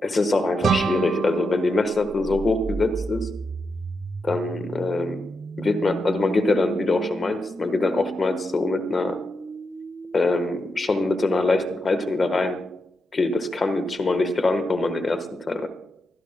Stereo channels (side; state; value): both; normal; correlation 0.85